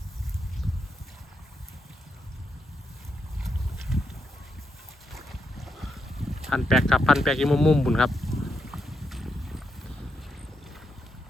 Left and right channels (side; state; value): both; normal; correlation 0.82